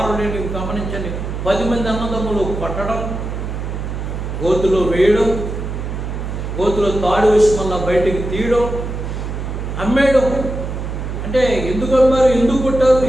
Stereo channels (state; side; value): noise; right; hum, 5 dB below the sound